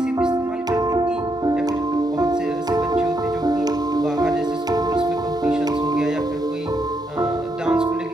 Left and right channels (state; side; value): normal; both; correlation 0.78